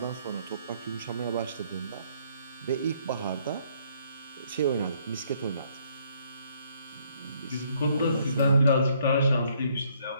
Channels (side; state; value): both; inverted; correlation -0.67